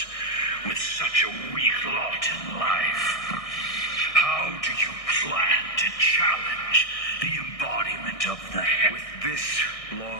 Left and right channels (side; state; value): right; late; 1.6 ms